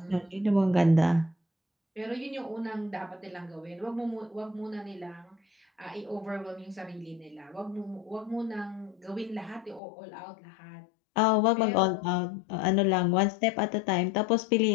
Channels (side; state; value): right; drops out; at 9.8 s